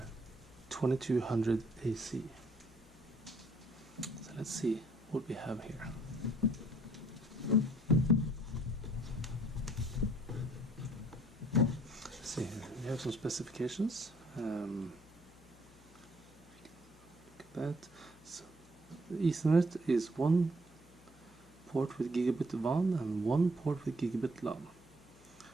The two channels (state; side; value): noise; left; hum, 25 dB below the sound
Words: So let's see what we have here. See here, we have some specifications. Look at that. So the Ethernet is one port with gigabit WAN and one port with gigabit LAN.